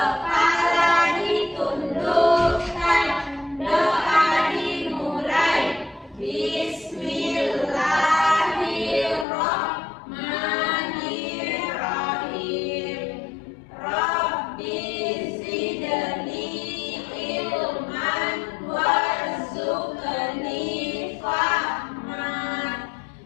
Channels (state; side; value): drops out; right; at 9.2 s